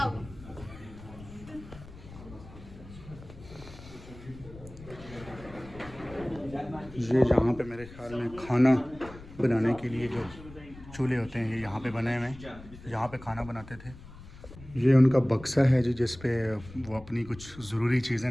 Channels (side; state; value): left; noise; rumble, 17 dB below the sound